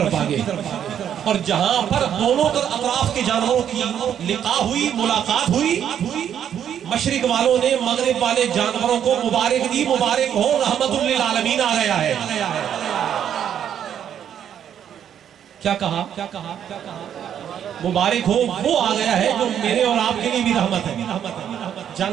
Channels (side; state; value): left; quieter; 9.3 dB